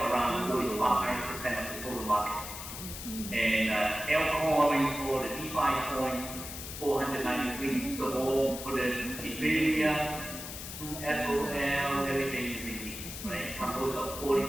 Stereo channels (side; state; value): left; noise; hiss, 9 dB below the sound